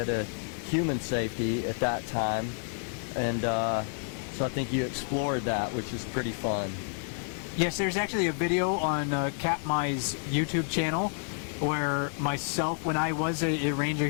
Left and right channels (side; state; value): right; silent; 56 dB below the other